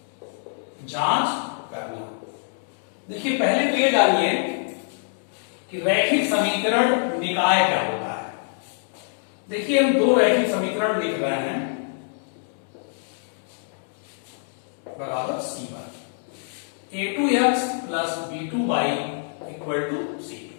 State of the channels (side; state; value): right; silent; digital silence